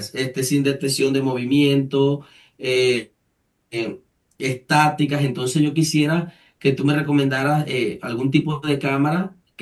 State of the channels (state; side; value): identical; both; correlation 1.00